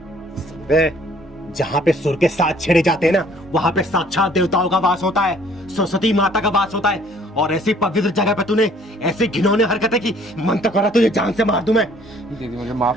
जहाँ पे सुर के साथ छेड़े जाते हैं ना, वहाँ पे साक्षात देवताओं का वास होता है, सरस्वती माता का वास होता है, और ऐसी पवित्र जगह पे तूने ऐसी घिनौनी हरकतें की, मन तो करा तुझे जान से मार दूं मैं। दीदी मुझे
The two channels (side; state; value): both; normal; correlation 0.58